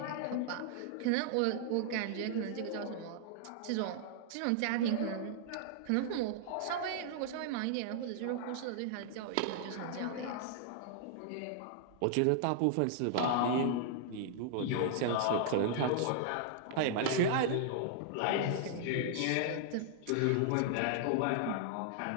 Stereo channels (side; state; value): both; different; correlation -0.01